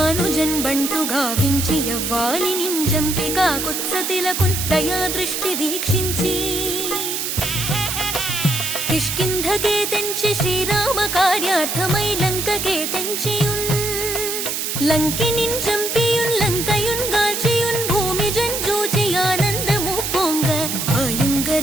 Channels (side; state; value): right; noise; hiss, 2 dB below the sound